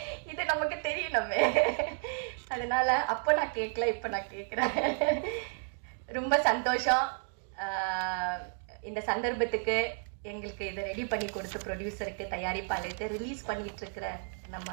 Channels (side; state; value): left; silent; 56 dB below the other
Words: இது நமக்கு தெரியணுமே. அதனால அப்போ நான் கேட்கல, இப்போ நான் கேட்குறேன். ரொம்ப சந்தோஷம். இந்த சந்தர்ப்பத்துக்கு எங்களுக்கு இதை ரெடி பண்ணி கொடுத்து ப்ரொடியூசருக்கு, தயாரிப்பாளருக்கு, ரிலீஸ் பண்ணிட்டு இருக்கிற நம்ம